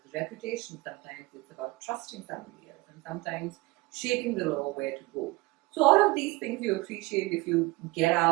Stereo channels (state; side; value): quieter; left; 22.8 dB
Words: the reputation, sometimes it's about trusting somebody else, and sometimes shaping the law where to go. So all of these things you appreciate if you get